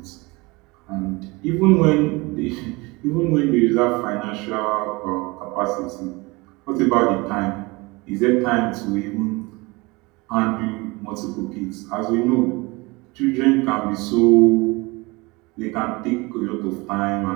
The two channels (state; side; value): quieter; left; 24.5 dB